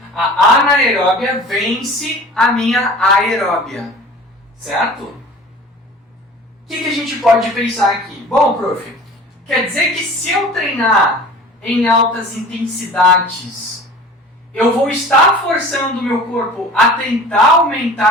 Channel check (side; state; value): both; normal; correlation 0.42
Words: a anaeróbia vence a minha aeróbia, certo? O que a gente pode pensar aqui? Bom, prof, quer dizer que se eu treinar em altas intensidades, eu vou estar forçando o meu corpo a tentar